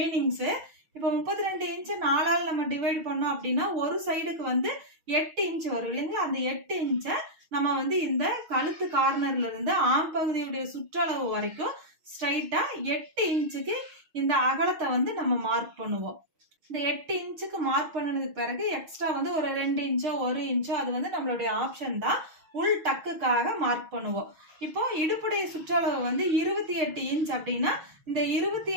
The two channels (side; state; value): left; late; 6.3 ms